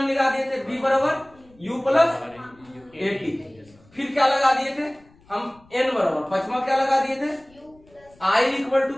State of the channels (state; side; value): noise; left; rumble, 29 dB below the sound